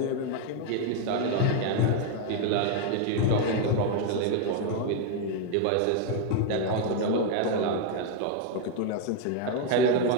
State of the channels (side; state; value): both; different; correlation 0.01